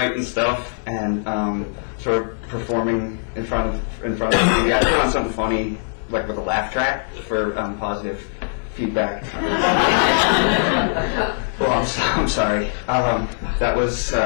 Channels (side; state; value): right; silent; 65 dB below the other